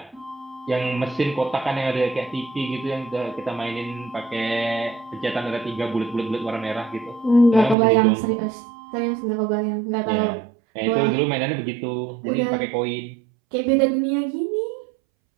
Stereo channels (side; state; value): left; drops out; at 7.8 s